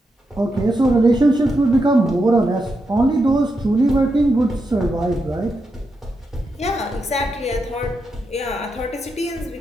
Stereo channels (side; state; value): both; normal; correlation 0.85